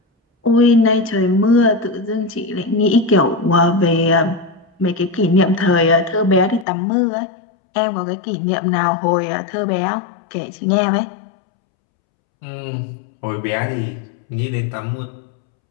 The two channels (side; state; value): right; drops out; at 6.7 s